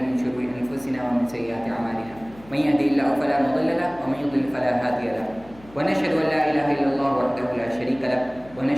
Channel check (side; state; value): left; noise; hum, 22 dB below the sound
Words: من شرور أنفسنا ومن سيئات أعمالنا، من يهده الله فلا مضل له ومن يضلل فلا هادي له، ونشهد أن لا إله إلا الله وحده لا شريك له،